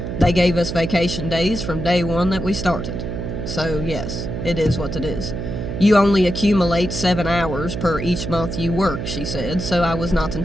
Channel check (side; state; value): right; noise; hum, 5 dB below the sound